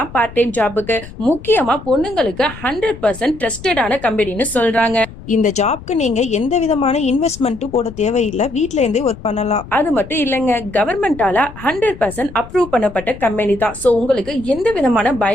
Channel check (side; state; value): left; noise; rumble, 16 dB below the sound